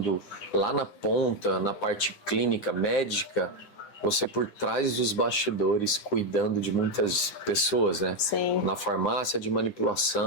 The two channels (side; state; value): right; late; 9.8 ms